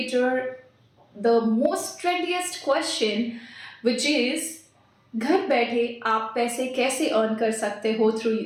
the most trendiest question, which is घर बैठे आप पैसे कैसे अर्न कर सकते हो थ्रू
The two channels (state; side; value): identical; both; correlation 1.00